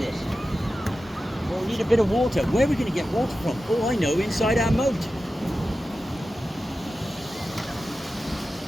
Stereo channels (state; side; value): normal; both; correlation 0.93